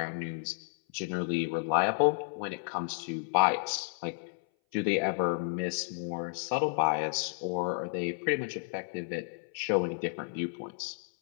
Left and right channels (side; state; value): right; silent; 57 dB below the other